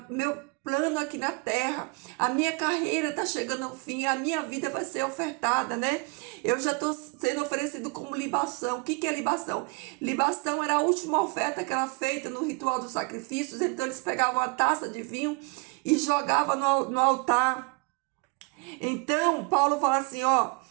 meu plano aqui na terra, a minha carreira está chegando ao fim, a minha vida vai ser ofertada, né? Eu já estou sendo oferecido como libação. O que é libação? Libação era a última oferta que era feita no ritual dos sacrifícios. Então eles pegavam uma taça de vinho e jogavam no altar. Então Paulo fala assim, ó:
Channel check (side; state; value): left; quieter; 31.0 dB